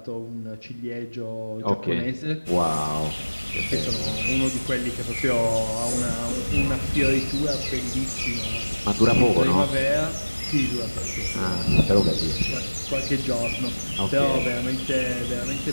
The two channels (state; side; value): inverted; both; correlation -1.00